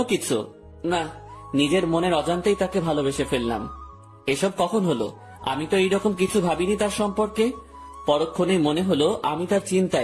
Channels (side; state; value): both; identical; correlation 1.00